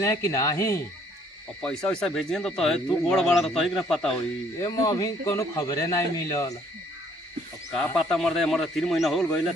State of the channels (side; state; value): both; normal; correlation 0.62